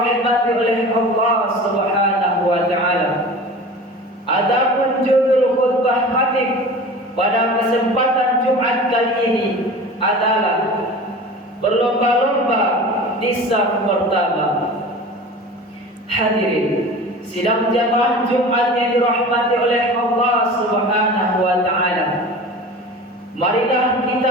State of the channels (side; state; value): both; normal; correlation 0.37